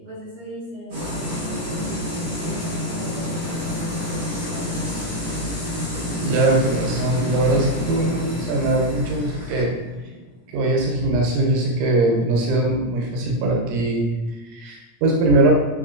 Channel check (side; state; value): left; late; 17 ms